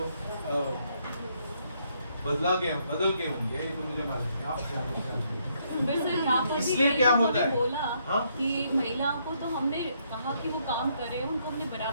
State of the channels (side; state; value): both; inverted; correlation -0.73